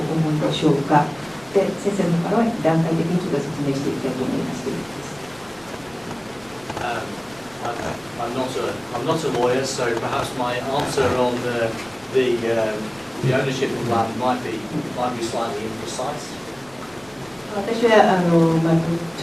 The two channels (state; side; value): noise; right; rumble, 27 dB below the sound